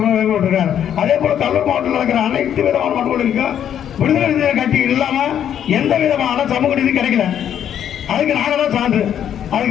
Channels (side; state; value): right; quieter; 9.6 dB